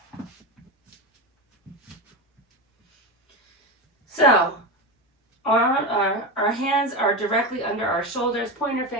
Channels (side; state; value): both; normal; correlation 0.18